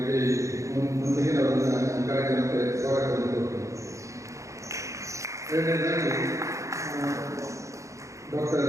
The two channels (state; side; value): late; left; 0.15 ms